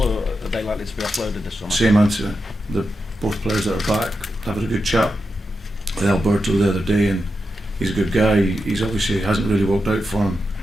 are they likely to be offloaded this summer? Same answer. The both players that are back, having a good chat with Alberto the other day, and he's a good guy. He's obviously hasn't really worked out for him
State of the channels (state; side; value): normal; both; correlation 0.88